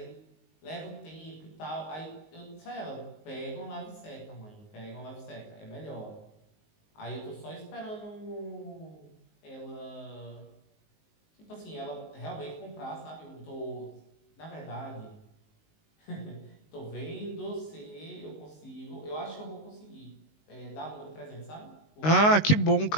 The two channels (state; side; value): late; right; 19 ms